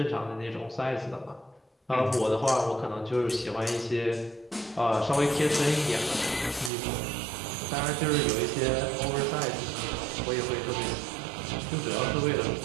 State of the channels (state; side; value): drops out; left; at 6.7 s